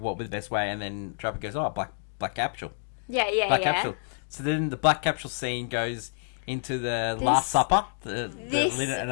would the best way?" And then Trapper goes, "Oh, black capsule." Yeah. Black capsule. So then the black capsule scene goes into the Last Supper.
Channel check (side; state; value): right; silent; digital silence